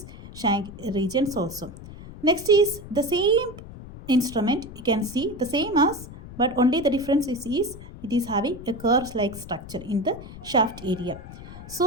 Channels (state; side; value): noise; left; rumble, 14 dB below the sound